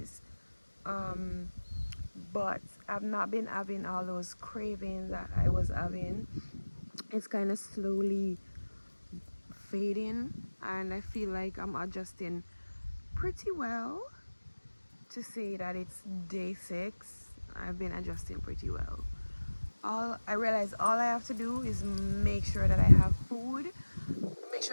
um but I've not been having all those cravings that I was having. It's kind of slowly fading, and I feel like I'm adjusting pretty well. To say that it's day 6, I've been adjusting pretty well. All I realize, all I have to do is make sure that I have food, make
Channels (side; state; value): both; inverted; correlation -1.00